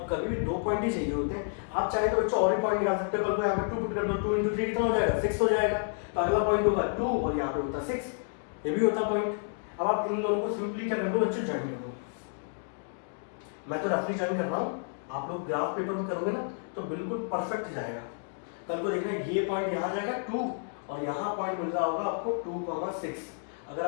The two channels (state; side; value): silent; right; digital silence